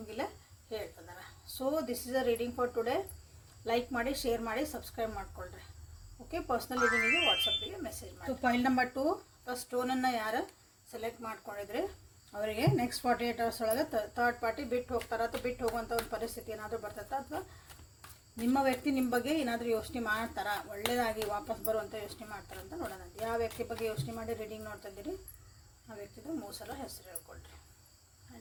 ಹೇಳ್ತಿದ್ದಾರೆ. So this is a reading for today. Like ಮಾಡಿ, ಶೇರ್ ಮಾಡಿ, ಸಬ್ಸ್ಕ್ರೈಬ್ ಮಾಡ್ಕೊಳ್ರಿ. ಓಕೆ, ಪರ್ಸ್ನಲ್ ರೀಡಿಂಗಿಗೆ ವಾಟ್ಸಪ್ಪಿಗೆ ಮೆಸೇಜ್ ಮಾಡಿ. ಫೈಲ್ ನಂಬರ್ 2 ಸ್ಟೋನನ್ನು ಯಾರು ಸೆಲೆಕ್ಟ್ ಮಾಡ್ಕೊಂಡಿದ್ರೆ ಅವರಿಗೆ ನೆಕ್ಸ್ಟ್ 48 hours ಒಳಗೆ ಥರ್ಡ್ ಪಾರ್ಟಿ ಬಿಟ್ಟು ಹೋಗ್ತಾರೆ, ಅಥವಾ ಬಿಟ್ಟು ಹೋಗುವಂಥ ಒಂದು ಪರಿಸ್ಥಿತಿ ಏನಾದರೂ ಬರ್ತೈತೆ, ಅಥವಾ ನಿಮ್ಮ ವ್ಯಕ್ತಿ ನಿಮ್ಮ ಬಗ್ಗೆ ಏನಾದರೂ ಯೋಚನೆ ಮಾಡ್ತಾರಾ, ಒಳ್ಳೆಯದಾಗಿ ವಾಪಸ್ ಬರುವಂಥ ಯೋಚನೆ ಮಾಡ್ತಾರೆ ಅಂತ ನೋಡೋಣ. ಯಾವ ವ್ಯಕ್ತಿ ಬಗ್ಗೆ ಯೋಚನೆ ಮಾಡಿ ರೀಡಿಂಗ್ ನೋಡ್ತಾ ಇದ್ದೀರಿ ಆ ವ್ಯಕ್ತಿದು 3 ಸಲ ಹೆಸರು ಹೇಳ್ಕೊಳ್ರಿ.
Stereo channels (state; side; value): identical; both; correlation 1.00